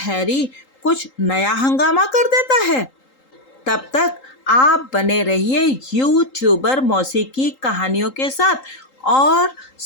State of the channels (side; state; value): right; late; 3.8 ms